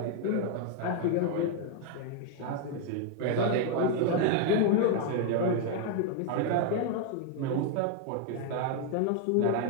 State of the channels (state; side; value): different; both; correlation 0.00